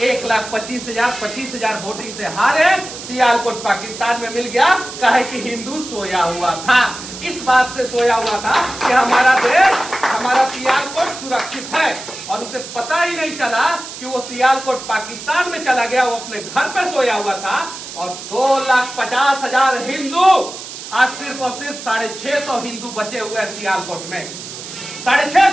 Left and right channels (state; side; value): noise; right; hiss, 11 dB below the sound